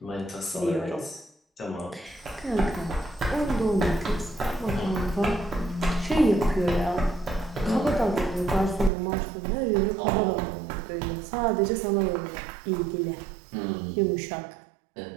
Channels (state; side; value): drops out; left; at 8.9 s